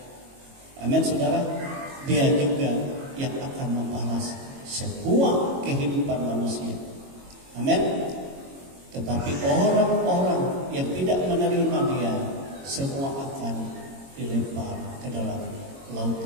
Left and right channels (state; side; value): late; left; 22 ms